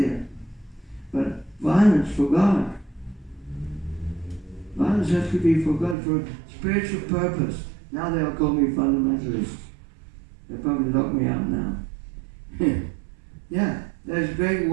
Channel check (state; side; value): drops out; left; at 6.0 s